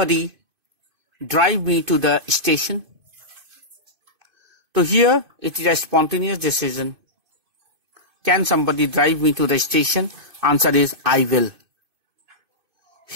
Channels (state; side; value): late; left; 2.5 ms